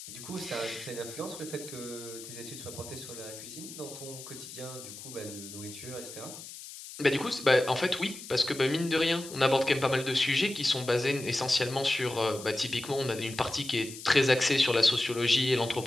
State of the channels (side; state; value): left; noise; hiss, 13 dB below the sound